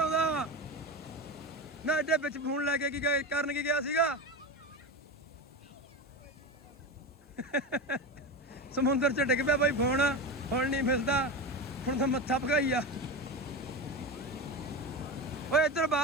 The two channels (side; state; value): both; normal; correlation 0.22